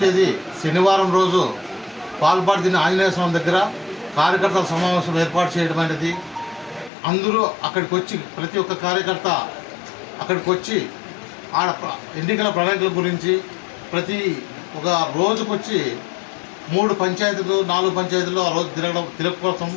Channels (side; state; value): right; drops out; at 6.9 s